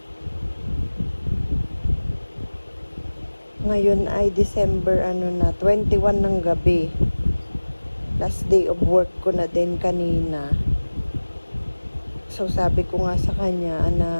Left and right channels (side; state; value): both; inverted; correlation -1.00